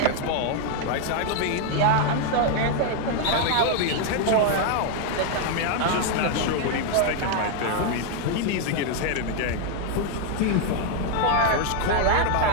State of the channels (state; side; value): different; both; correlation 0.01